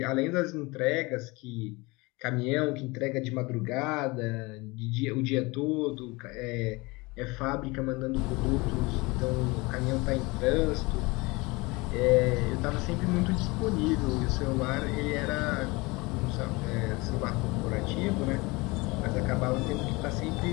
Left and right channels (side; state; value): right; quieter; 24.4 dB